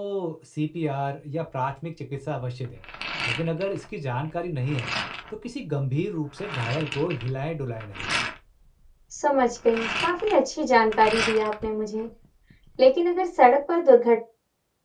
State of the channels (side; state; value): both; identical; correlation 1.00